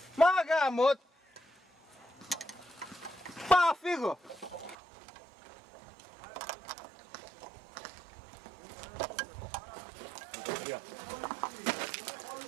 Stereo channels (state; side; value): drops out; left; at 4.8 s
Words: Μα γάμο! Πάω, φύγω!